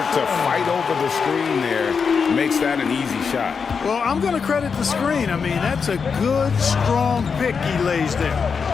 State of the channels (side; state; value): right; quieter; 5.8 dB